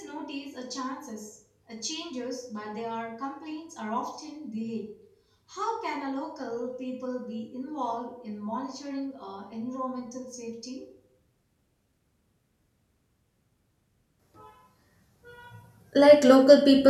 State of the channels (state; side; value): identical; both; correlation 1.00